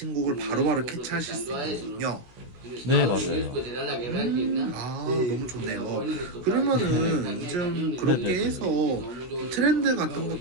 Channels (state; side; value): late; left; 16 ms